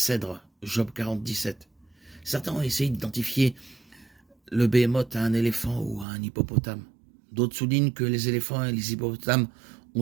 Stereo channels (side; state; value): left; drops out; at 6.1 s